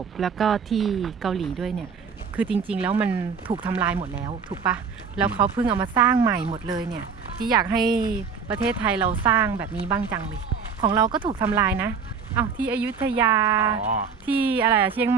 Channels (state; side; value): quieter; left; 6.0 dB